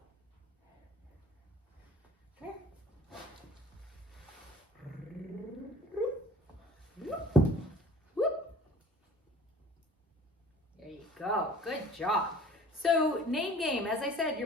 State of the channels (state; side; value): normal; both; correlation 0.48